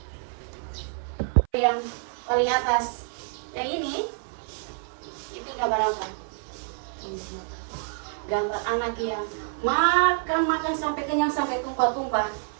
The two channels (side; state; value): left; silent; 57 dB below the other